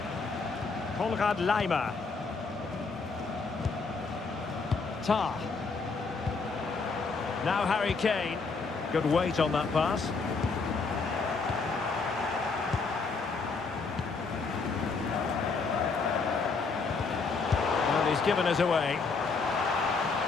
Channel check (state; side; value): quieter; right; 4.5 dB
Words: Konrad Laimer. Tar. Now Harry Kane. Good weight on that pass. And he's given us away.